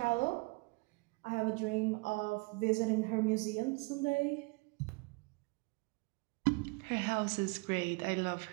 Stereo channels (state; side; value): quieter; left; 28.1 dB